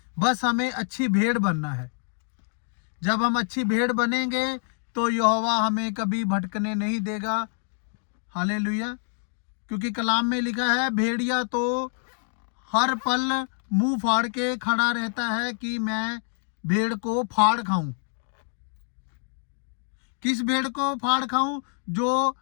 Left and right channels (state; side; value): silent; right; digital silence